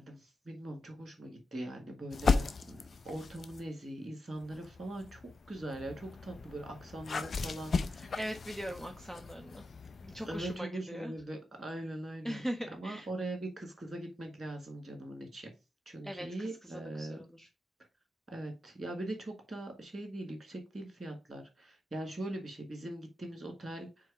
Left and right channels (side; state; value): both; normal; correlation 0.89